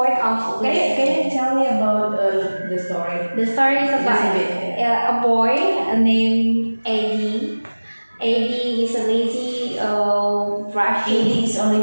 of. Can you tell me about the story? The story is about a boy named Eddie. Eddie is a lazy brushing. Eddie is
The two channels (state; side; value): inverted; both; correlation -1.00